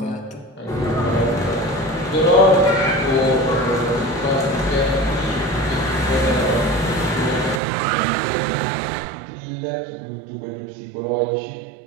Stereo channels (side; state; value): left; drops out; at 7.6 s